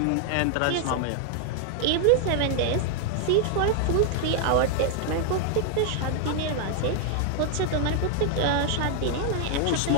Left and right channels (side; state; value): both; different; correlation 0.00